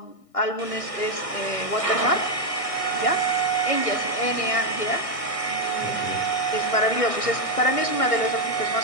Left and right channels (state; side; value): late; right; 1.6 ms